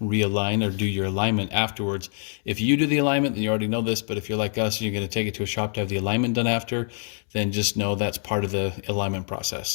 realign or do your alignment afterwards. If you do the alignment, then you already know this, but if you're like us and you're going to take it to a shop to have the alignment done after, then just know that's part of the alignment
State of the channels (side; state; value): right; silent; 62 dB below the other